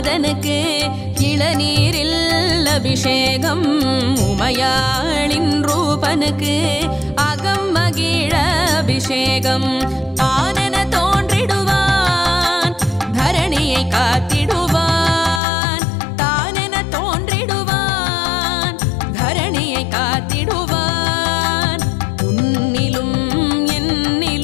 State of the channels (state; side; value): drops out; right; at 15.4 s